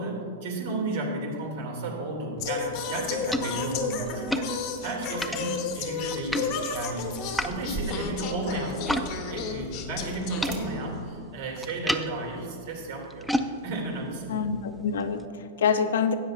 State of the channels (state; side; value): normal; both; correlation -0.01